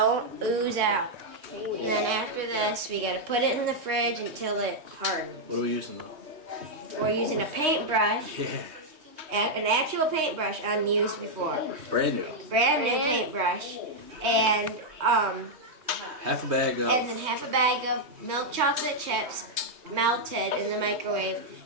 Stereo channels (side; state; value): left; late; 3.2 ms